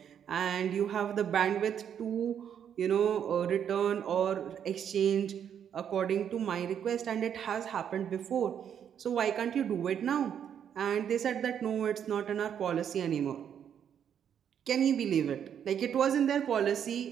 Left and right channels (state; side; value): quieter; left; 8.7 dB